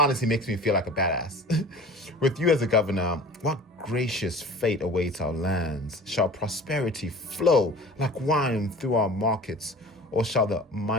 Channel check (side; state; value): both; normal; correlation 0.40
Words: makes me feel like a badass. With you as a governor, what gracious fate awaits our lands? Shall prosperity flow like wine through our markets, or shall the